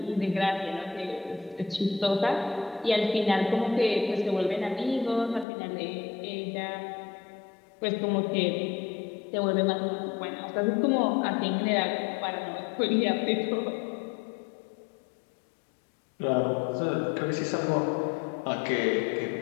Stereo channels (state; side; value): drops out; right; at 5.5 s